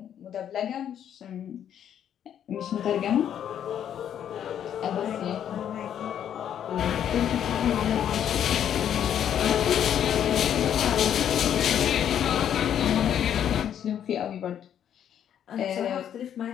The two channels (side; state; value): right; quieter; 9.6 dB